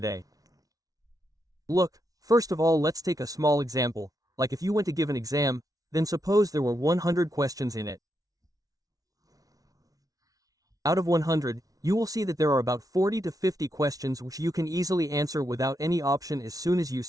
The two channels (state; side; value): late; left; 0.18 ms